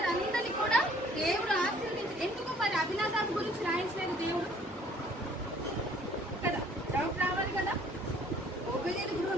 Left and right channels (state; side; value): normal; both; correlation 0.57